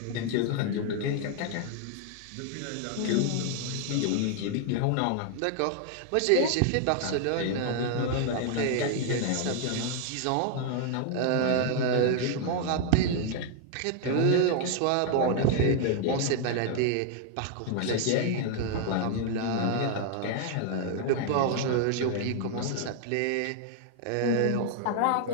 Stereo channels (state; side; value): different; both; correlation 0.00